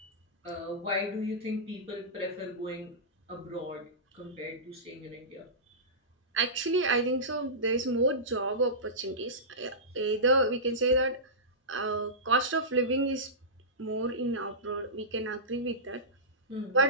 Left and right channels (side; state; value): both; normal; correlation -0.17